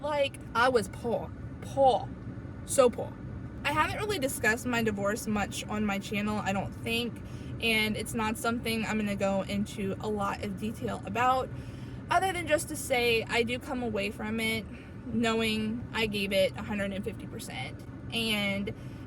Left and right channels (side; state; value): both; identical; correlation 1.00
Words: Like, I was poor, so poor. I haven't really discussed my divorce much on my channel, I don't think, and it's not something I'm gonna go into a lot of detail about, other than just to say I do come away from it knowing I gave it 150%, and